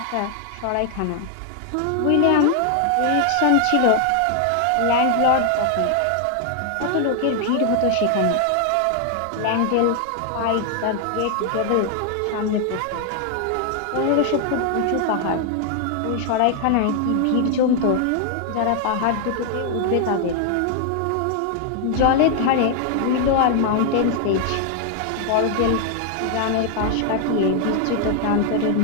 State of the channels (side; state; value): both; different; correlation 0.00